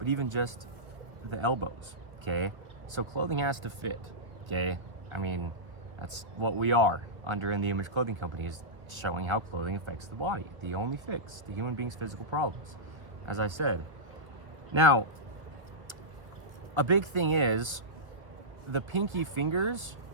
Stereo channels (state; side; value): late; left; 1.7 ms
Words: even just the elbows, okay? So clothing has to fit, okay? I mean, that's what we are under In The Image Clothing Company, is showing how clothing affects the body. The only fix to human beings' physical problems, as I said. Now, a big thing is the pinky fingers